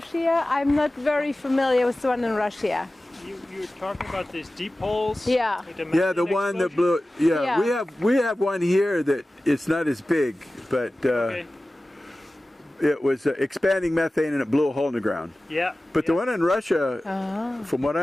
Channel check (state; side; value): normal; both; correlation 0.96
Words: I'm not very familiar with the one in Russia. You're talking about these deep holes? Yeah. Yeah, the one that blew. Yeah, we have one here that it's not as big, but it was expanding methane and it blew a hole in the ground. Yeah. But the one in Russia, from what